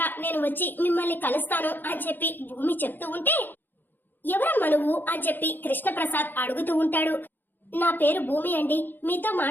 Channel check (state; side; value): late; right; 0.092 ms